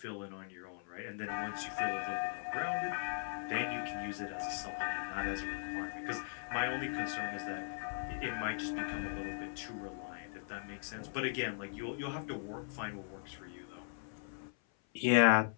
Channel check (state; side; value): silent; right; 52 dB below the other